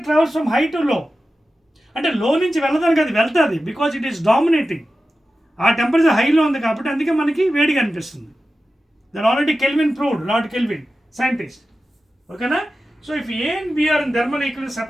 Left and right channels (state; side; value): normal; both; correlation 0.93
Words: travels from high to low అంటే లో నుంచి వెళ్ళదానికి అది వెళ్తుంది because it is dominating ఆ temperature హైలో ఉంది కాబట్టి అందుకే మనకి వేడిగా అనిపిస్తుంది that already Kelvin proved lord Kelvin scientist ఓకేనా so if A and B are in thermal equilibrium